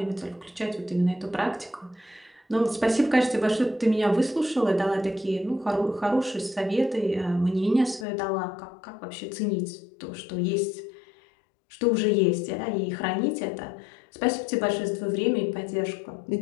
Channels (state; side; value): drops out; right; at 8.1 s